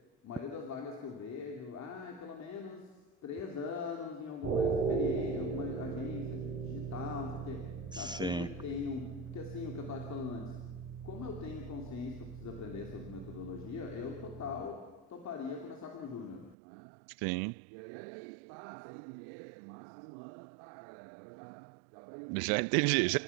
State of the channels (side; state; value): left; drops out; at 16.6 s